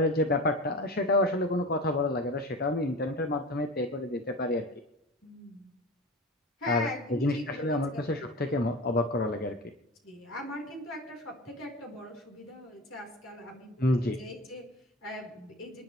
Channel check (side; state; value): both; normal; correlation 0.31